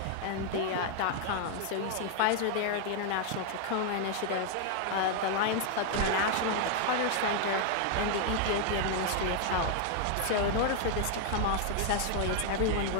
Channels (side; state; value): both; different; correlation 0.00